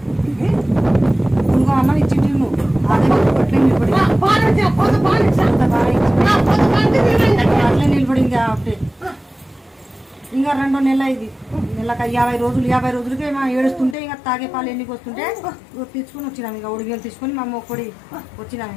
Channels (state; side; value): drops out; right; at 14.0 s